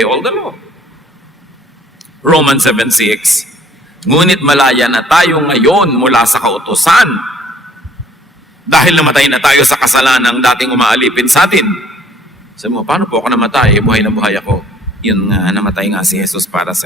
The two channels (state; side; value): normal; both; correlation 0.58